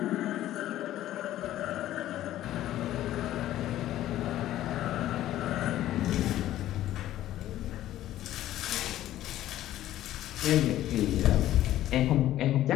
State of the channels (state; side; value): quieter; right; 13.5 dB